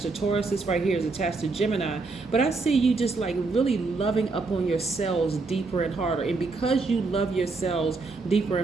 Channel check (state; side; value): quieter; left; 3.8 dB